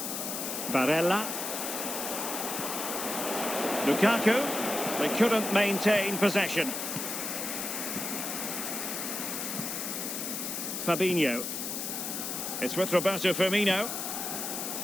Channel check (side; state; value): left; noise; hiss, 4 dB below the sound